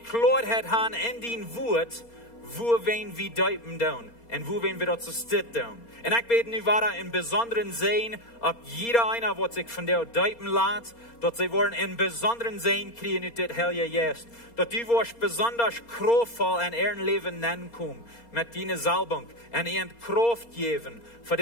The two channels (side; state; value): right; late; 4.3 ms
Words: haben in dein Wort, wo wir deuten tun und wo wir das steht tun. Und ich bete nu weiter in besonderen Sehen, ob jeder einer, was sich von dir deuten lässt, dass sie wollen in besonderen Sehen kriegen ut das Heilige Geist. Dass du wirst besonders kraftvoll in ihrem Leben nennen kommen, mit deiner Salbung und ihnen Kraft geben für